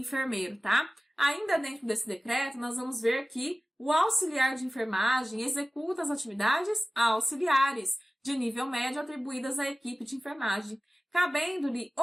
tá? Ainda dentro desse decreto, nós vamos ver que o auxiliar de enfermagem executa as atividades auxiliares de nível médio atribuídas à equipe de enfermagem, cabendo-lhe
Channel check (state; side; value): normal; both; correlation 0.97